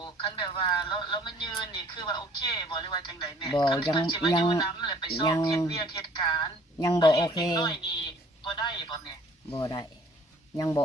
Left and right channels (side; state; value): both; normal; correlation 0.55